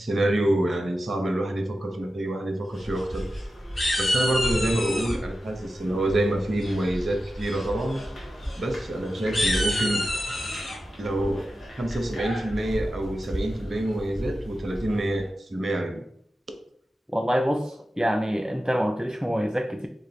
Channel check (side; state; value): both; normal; correlation 0.92